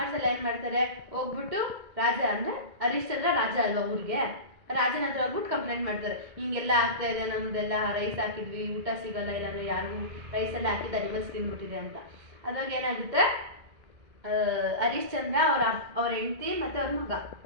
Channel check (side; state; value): left; late; 1.9 ms